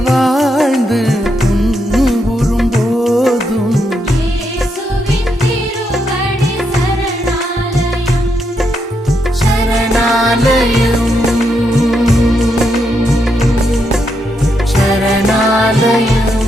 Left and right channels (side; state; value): both; normal; correlation 0.80